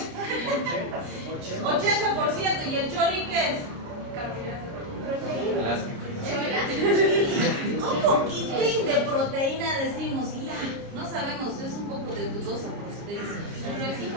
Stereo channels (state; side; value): late; left; 29 ms